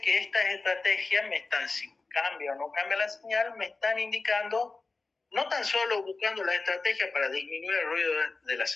que estas estrategias si cambia o no cambia la señal, me están indicando, no tan solo buscando la estrategia para disminuir el ruido de la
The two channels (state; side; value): quieter; right; 3.8 dB